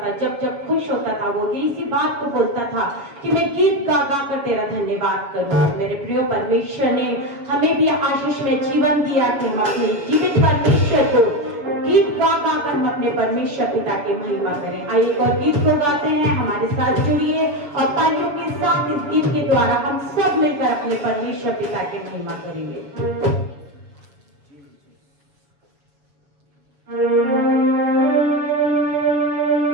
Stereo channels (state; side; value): late; left; 7.1 ms